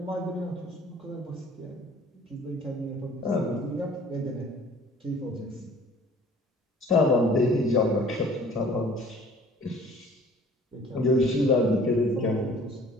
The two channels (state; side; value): normal; both; correlation 0.51